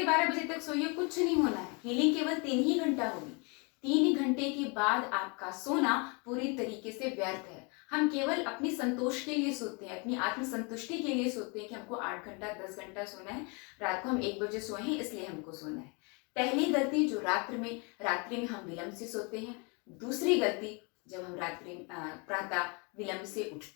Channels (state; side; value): quieter; right; 32.1 dB